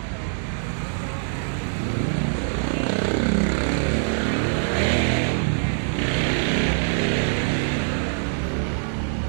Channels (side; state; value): left; silent; digital silence